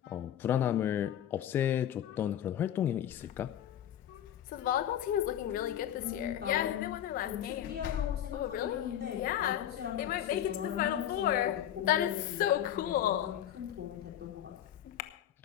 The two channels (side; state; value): right; quieter; 10.8 dB